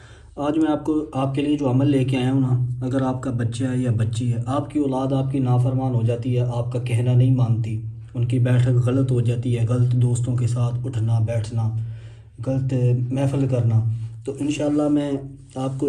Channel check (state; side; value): identical; both; correlation 1.00